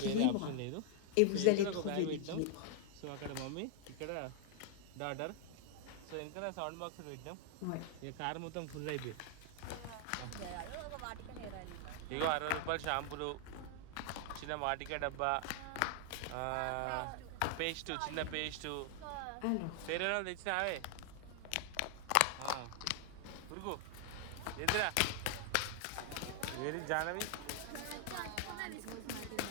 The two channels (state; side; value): different; both; correlation 0.00